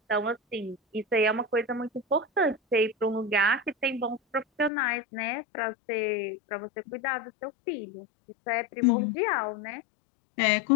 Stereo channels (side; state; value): right; drops out; at 4.7 s